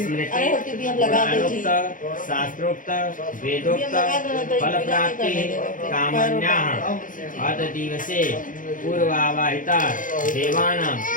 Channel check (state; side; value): late; right; 0.39 ms